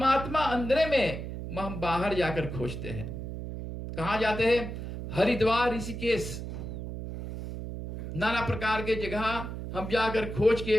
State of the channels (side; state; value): right; noise; hum, 7 dB below the sound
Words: अंदर में हम बाहर जाकर खोजते हैं। कहां जाते हैं? हरिद्वार, ऋषिकेश, नाना प्रकार के जगह हम जाकर खोज